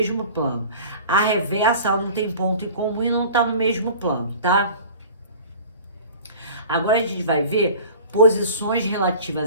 plano. A reversa, ela não tem ponto em comum e não está no mesmo plano, tá? Agora a gente vai ver posições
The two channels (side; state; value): both; inverted; correlation -0.41